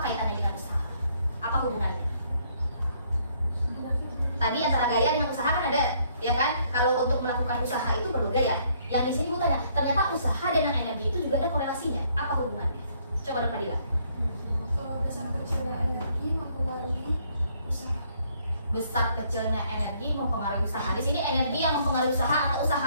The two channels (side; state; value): both; inverted; correlation -0.67